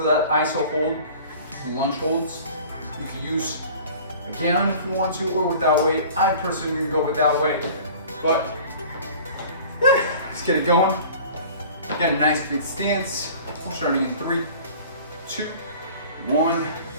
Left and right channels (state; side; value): inverted; both; correlation -0.44